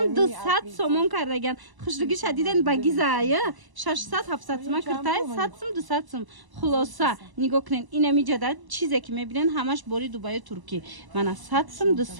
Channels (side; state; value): left; late; 1.0 ms